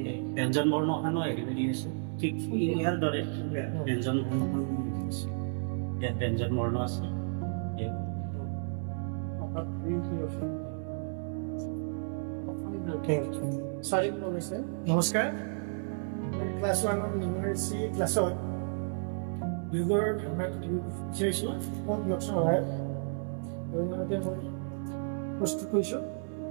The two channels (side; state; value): left; silent; digital silence